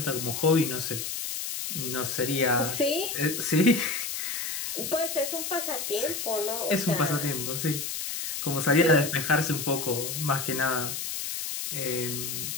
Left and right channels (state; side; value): noise; left; hiss, 4 dB below the sound